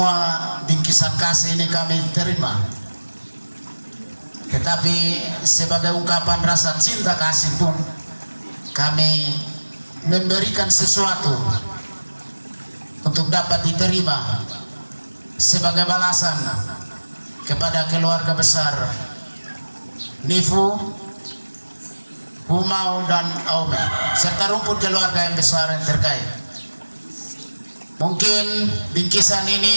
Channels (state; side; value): inverted; both; correlation -1.00